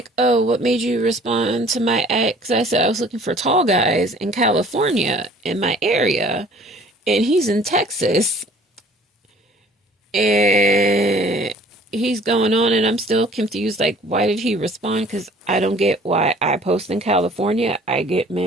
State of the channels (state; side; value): normal; both; correlation 0.52